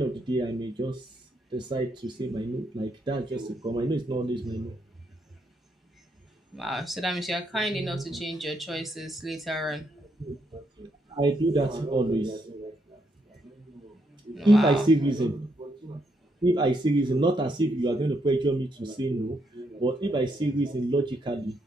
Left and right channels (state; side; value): normal; both; correlation 0.77